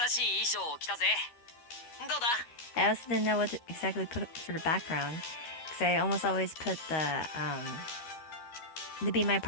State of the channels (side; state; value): right; late; 13 ms